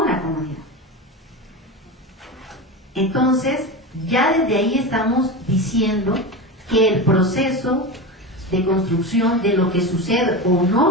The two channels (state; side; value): normal; both; correlation 0.23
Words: la comunidad. Entonces, ya desde ahí estamos diciendo que el proceso de construcción de lo que sucede o